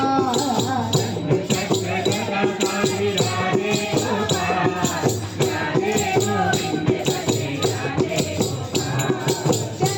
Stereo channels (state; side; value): identical; both; correlation 1.00